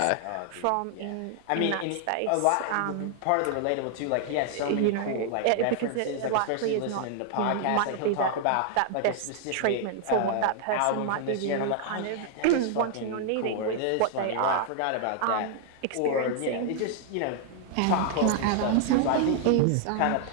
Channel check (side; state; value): both; different; correlation 0.00